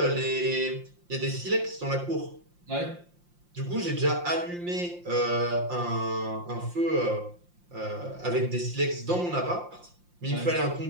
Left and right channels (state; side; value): late; left; 5.7 ms